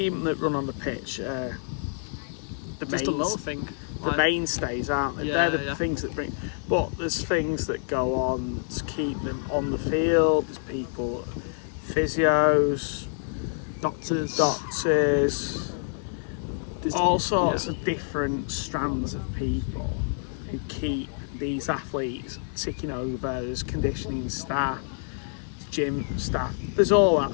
that run on the pitch, Just a little thing. The mainstays, aren't they? Yeah, They're the things that bring. But there's things that go on to keep them on the field. There's people, physios, Doctors. All sorts of different strands of people who keep these athletes ticking over. There's conditioning staff, gym staff. There's all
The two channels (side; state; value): right; silent; digital silence